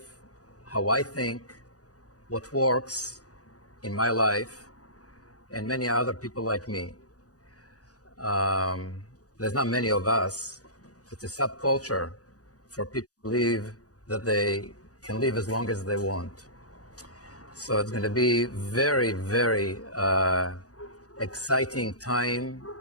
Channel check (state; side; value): late; right; 0.67 ms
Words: how I think, what works in my life, and many other people like me. There's not many of us. It's a subculture for people to believe that they can live as long as they want. So it's going to be very, very exciting time,